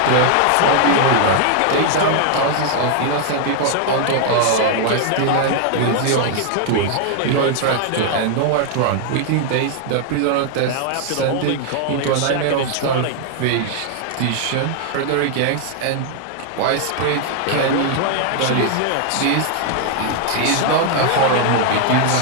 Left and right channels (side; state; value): both; different; correlation 0.00